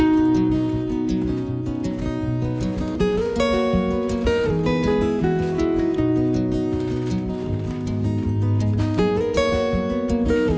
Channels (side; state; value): both; identical; correlation 1.00